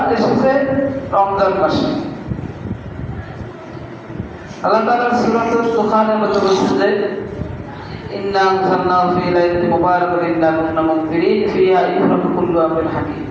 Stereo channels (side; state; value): both; identical; correlation 1.00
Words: এসেছে রমজান মাসে। আল্লাহ তাআলা সূরাতুল দুখানের মধ্যে বলছেন যে ইন্না আনজালনাহু ফী লাইলাতিন মুবারাকাতিন ইন্না কুন্না মুনজিরিন ফিহা ইফরাকু কুল্লু আমরিন হাকীম।